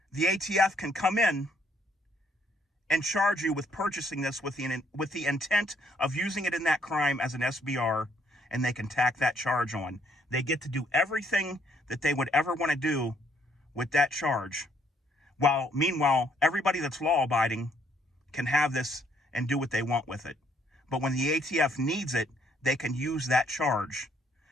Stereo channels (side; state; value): both; normal; correlation 0.68